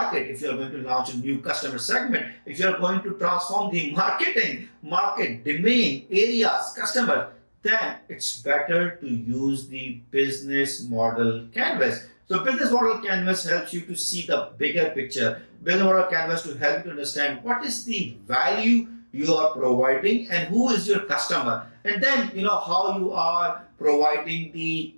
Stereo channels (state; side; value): inverted; both; correlation -1.00